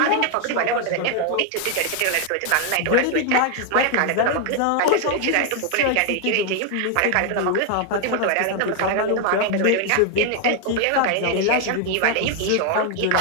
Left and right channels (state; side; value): different; both; correlation 0.00